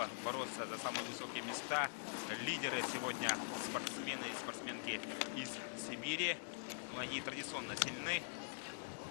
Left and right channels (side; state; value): right; silent; digital silence